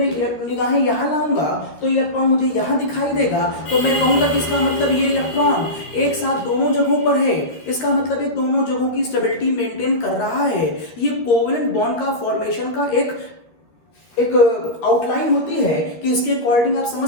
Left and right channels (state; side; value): late; right; 13 ms